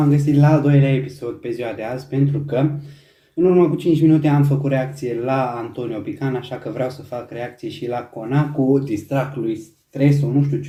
găsit la al doilea episod pe ziua de azi, pentru că în urmă cu 5 minute am făcut reacție la Antonio Pican, așa că vreau să fac reacție și la Conacu, distract lui Stresul, nu știu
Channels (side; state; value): both; identical; correlation 1.00